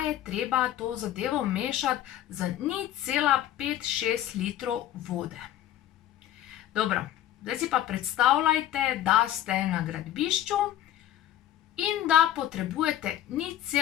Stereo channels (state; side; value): quieter; right; 12.4 dB